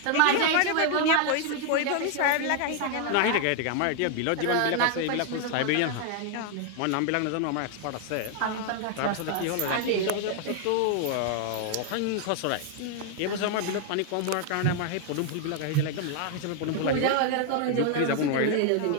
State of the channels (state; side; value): different; both; correlation 0.00